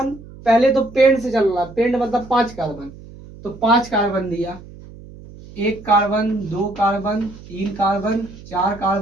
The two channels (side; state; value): right; noise; hum, 18 dB below the sound